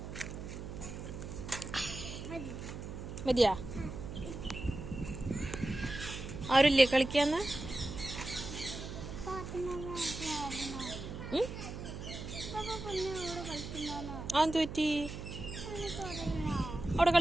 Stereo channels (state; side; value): noise; right; hum, 8 dB below the sound